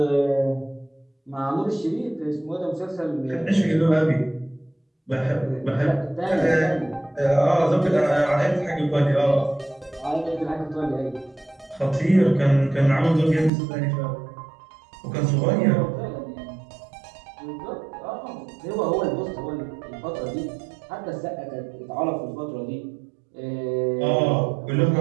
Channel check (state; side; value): drops out; left; at 13.5 s